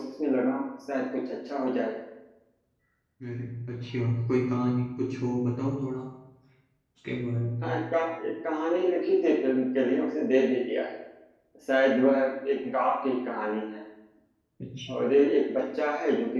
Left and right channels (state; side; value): identical; both; correlation 1.00